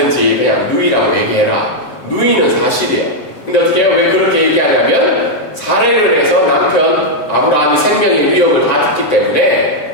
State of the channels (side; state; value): right; late; 7.7 ms